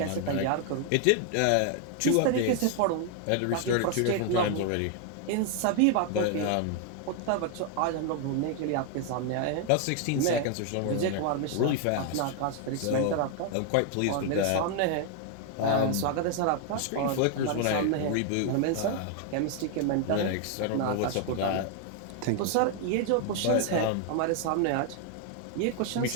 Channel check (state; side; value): different; both; correlation 0.00